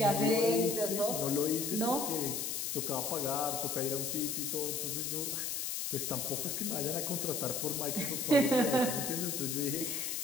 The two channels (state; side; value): noise; left; hiss, 2 dB below the sound